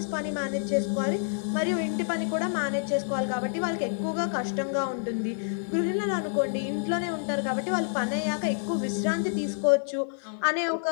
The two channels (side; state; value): right; silent; digital silence